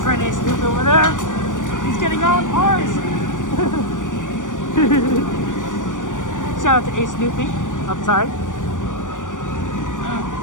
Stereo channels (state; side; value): late; right; 0.87 ms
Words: Ace Snoopy over there. He's getting on ours. Shout out to Ace Snoopy. I'm sorry.